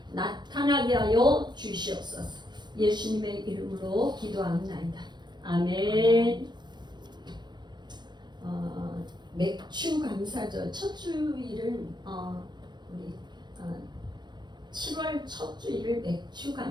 나타나게 하여 주시옵소서. 예수님의 이름으로 기도합니다. 아멘. 맥주 감사절 첫 주일은 우리 7월 첫 주일을 맥주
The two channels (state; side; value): late; left; 0.21 ms